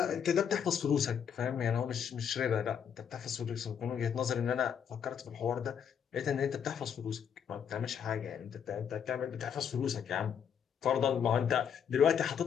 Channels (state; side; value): quieter; right; 7.9 dB